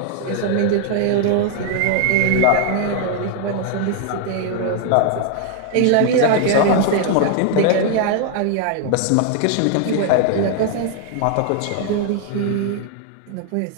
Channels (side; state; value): both; different; correlation 0.00